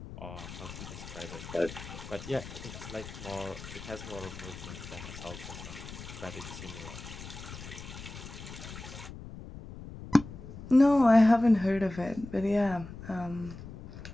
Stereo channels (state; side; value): noise; left; rumble, 12 dB below the sound